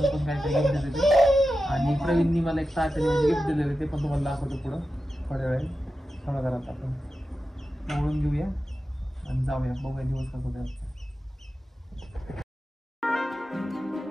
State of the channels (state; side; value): normal; both; correlation 0.92